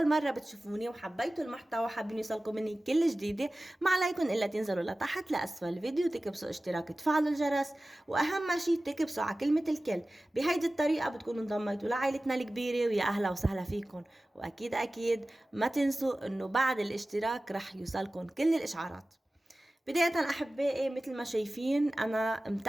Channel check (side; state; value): both; normal; correlation 0.96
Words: مرة بتشوفوني وحبيتوا المحتوى وحابين يوصلكم مني كل جديدة، ما عليكم إلا تنزلوا لتحت لأسفل الفيديو، تكبسوا اشتراك، تفعلوا الجرس، وأهم شي تكبسوا على كلمة الكل. بهيدي الطريقة بتكونوا انضميتوا لعائلتنا الكبيرة، ويا أهلا وسهلا فيكم. وأكيد أكيد ما تنسوا إنه بعد الاشتراك رح يوصلكم كل الإشعارات. بداية أحبائي، مثل ما شايفين أنا